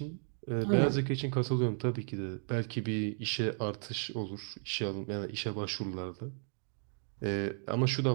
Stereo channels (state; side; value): silent; left; 55 dB below the other